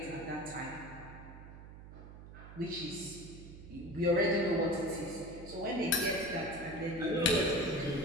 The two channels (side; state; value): right; noise; hum, 15 dB below the sound